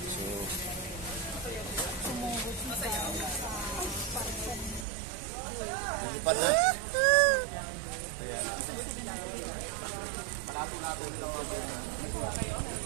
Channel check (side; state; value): left; drops out; at 4.9 s